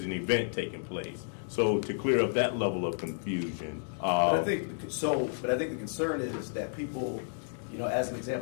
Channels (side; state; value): right; silent; digital silence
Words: an event taking place. So to clear up that level of confusion. But I think the concern is that people, as an